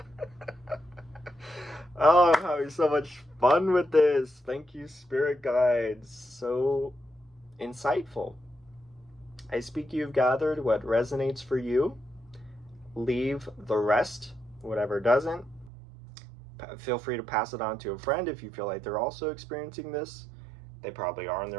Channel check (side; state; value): left; drops out; at 15.7 s